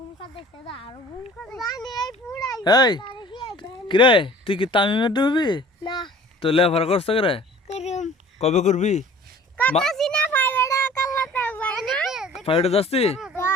এই কিরে তুই কি তামিমের ডুববি তো লেফার করছ করে কবে করবি ফাইভে যাচ্ছি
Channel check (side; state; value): both; normal; correlation 0.47